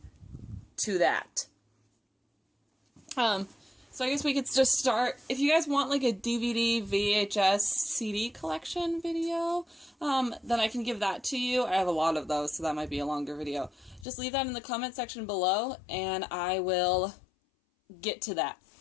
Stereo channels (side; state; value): right; drops out; at 14.1 s